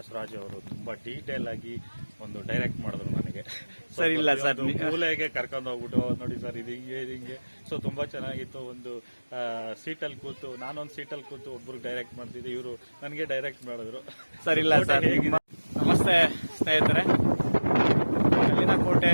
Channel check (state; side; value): inverted; both; correlation -1.00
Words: ಅವರು ತುಂಬಾ ಡೀಟೇಲ್ ಆಗಿ ಒಂದು ಡೈರೆಕ್ಟ್ ಮಾಡಿದ್ರು ನನಗೆ. ಸರ್ ಇಲ್ಲ ಸರ್, ಮೂಲೆಗೆ ಕರ್ಕೊಂಡು ಹೋಗ್ಬಿಟ್ಟು ನೋಡಿ ಸರ್ ಇದು ಹಿಂಗೆ ಇದು ಹಿಂಗೆ. ಸೊ ತುಂಬಾ ಚೆನ್ನಾಗಿತ್ತು. ಒಂದು ಸೀಟಲ್ಲಿ ಕೂತು ನಾನೊಂದು ಸೀಟಲ್ಲಿ ಕೂತು ಒಬ್ರು ಡೈರೆಕ್ಟ್ ಮಾಡ್ತಿದ್ದೆ, ಇವರು ನನಗೆ ಡೈರೆಕ್ಟ್ ಮಾಡಿದ್ರು. ಸರ್ ಇಲ್ಲ ಸರ್. ನಮಸ್ತೆ ಸ್ನೇಹಿತರೆ, ಕಲ್ಲಿನ